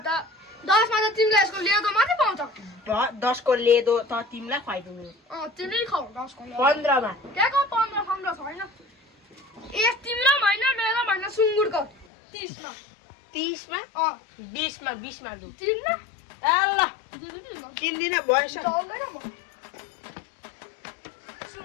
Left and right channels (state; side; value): drops out; right; at 12.1 s